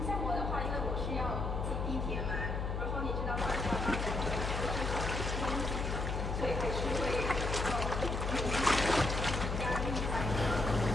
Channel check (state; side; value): noise; left; hum, 1 dB below the sound